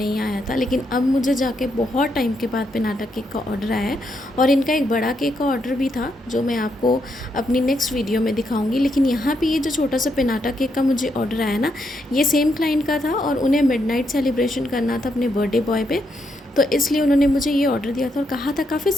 आया था। लेकिन अब मुझे जाके बहुत टाइम के बाद पिनाटा केक का ऑर्डर आया है। और इनका एक बड़ा केक का ऑर्डर भी था जो मैं आपको अपनी नेक्स्ट वीडियो में दिखाऊंगी। लेकिन यहाँ पे ये जो छोटा सा पिनाटा केक का मुझे ऑर्डर आया ना, ये सेम क्लाइंट का था और उन्हें मिडनाइट सेलिब्रेशन करना था अपने बर्थडे बॉय पे। तो इसलिए उन्होंने मुझे ये ऑर्डर दिया था और कहा था काफ़ी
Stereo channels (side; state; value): both; normal; correlation 0.79